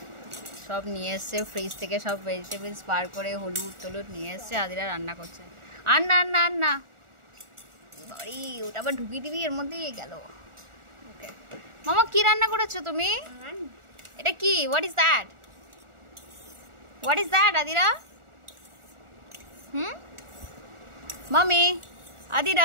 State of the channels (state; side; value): late; left; 1.4 ms